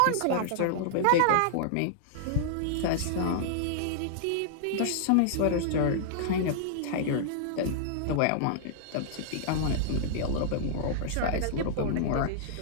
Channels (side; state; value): both; different; correlation -0.01